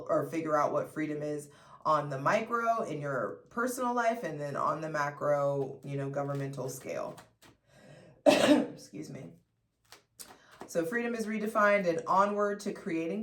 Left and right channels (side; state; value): both; identical; correlation 1.00